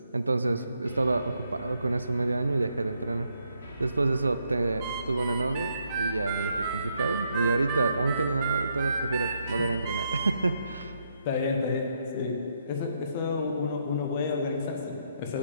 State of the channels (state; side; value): inverted; both; correlation -0.76